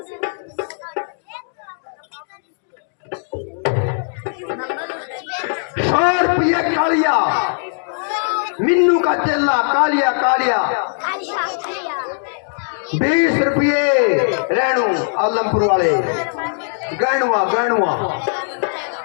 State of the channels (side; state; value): right; silent; digital silence